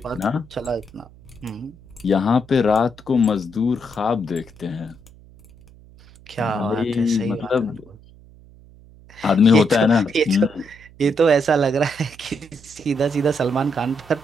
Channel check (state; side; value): noise; right; hum, 24 dB below the sound